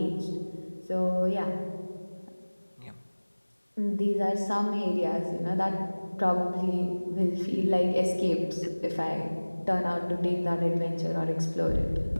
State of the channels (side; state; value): both; inverted; correlation -1.00